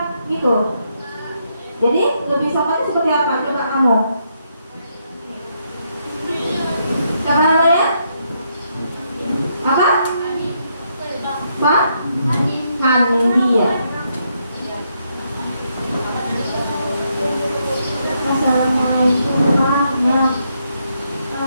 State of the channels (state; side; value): inverted; both; correlation -0.77